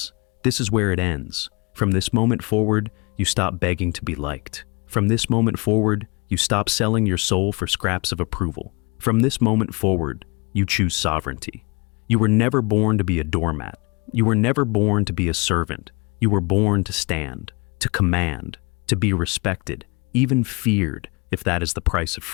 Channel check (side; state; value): right; quieter; 29.2 dB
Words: This is where it ends. From this moment forward, you stop begging to be liked. From this moment forward, you stop selling your soul for scraps of approval. From this moment forward, you choose sovereignty. You were never born to be a doormat. You were never born to be a servant. You were born to stand, to command, to be respected, even feared, if that is the price of